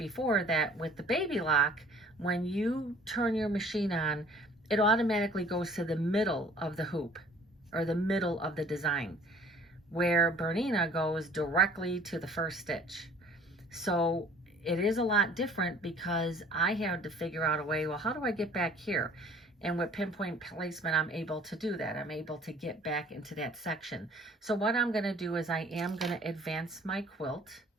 that with the baby lock, when you turn your machine on, it automatically goes to the middle of the hoop, or the middle of the design, where Bernina goes directly to the first stitch. So it is a lot different because I had to figure out a way, well, how do I get back here? And with pinpoint placement, I'm able to do that. I'm able to get back into that section. So what I'm going to do is I am going to advance my quilt.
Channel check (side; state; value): both; normal; correlation 0.53